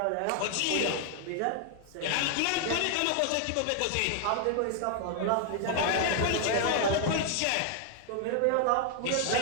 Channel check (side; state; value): both; different; correlation 0.00